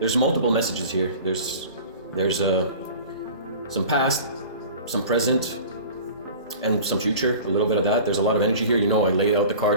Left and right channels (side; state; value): both; inverted; correlation -0.41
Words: multiple messages here. There's some past, some present, and some future, a little bit of that. There's a lot of energy here. You know, I lay out the